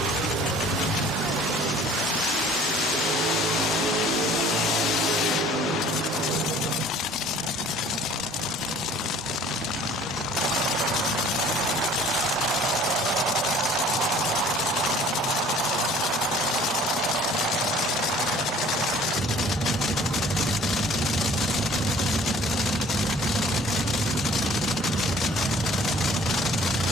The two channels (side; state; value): both; normal; correlation 0.52